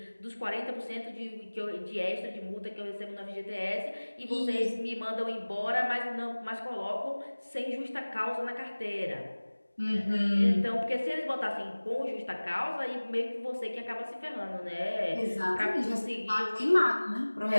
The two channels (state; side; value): inverted; both; correlation -1.00